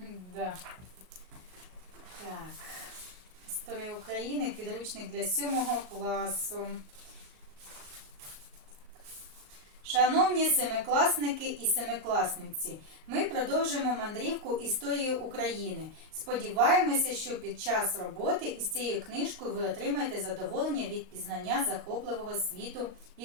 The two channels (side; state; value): left; late; 38 ms